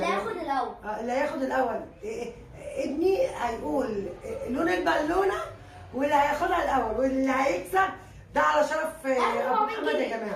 هياخد الاول. اللي هياخد الاول ابني هيقول لون البالونه واللي هياخدها الاول واللي هيكسب ده على شرف ابو محمد يا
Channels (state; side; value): identical; both; correlation 1.00